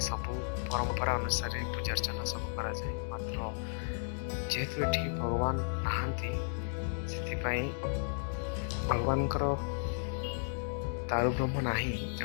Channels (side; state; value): right; silent; digital silence